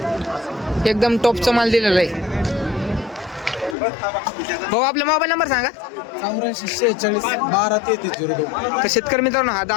एकदम टॉपचा माल दिलेला आहे. भाऊ आपला मोबाईल नंबर सांगा. 84 46 12 33 02. तर शेतकरी मित्रांनो हा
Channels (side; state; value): right; drops out; at 3.8 s